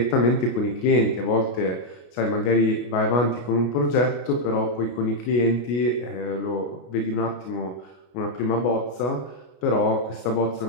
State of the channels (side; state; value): right; late; 33 ms